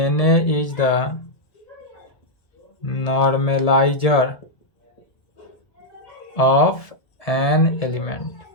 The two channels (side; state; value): right; late; 1.7 ms